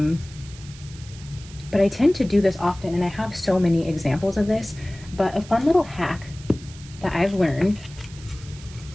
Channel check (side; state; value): right; noise; hiss, 19 dB below the sound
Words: but I tend to do this often, and I have so many examples of this. But a fun little hack that I've learned